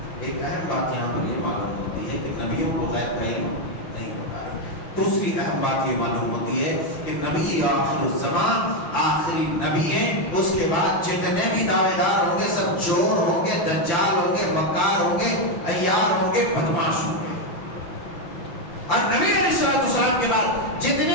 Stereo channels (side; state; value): right; late; 5.9 ms